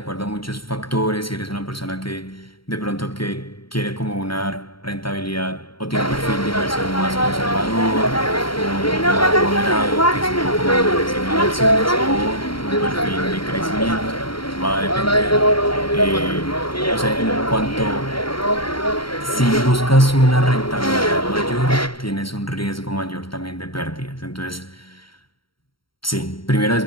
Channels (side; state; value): right; late; 0.74 ms